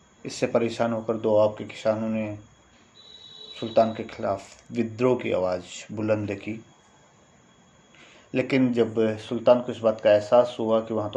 इससे परेशान होकर दोआब के किसानों ने सुल्तान के खिलाफ विद्रोह की आवाज़ बुलंद की। लेकिन जब सुल्तान को इस बात का एहसास हुआ कि वहाँ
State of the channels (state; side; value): identical; both; correlation 1.00